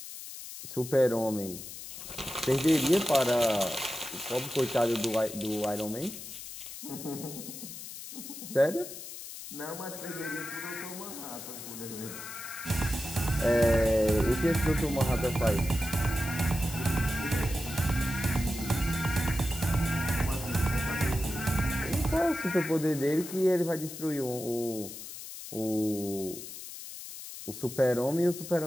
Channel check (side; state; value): left; noise; hiss, 11 dB below the sound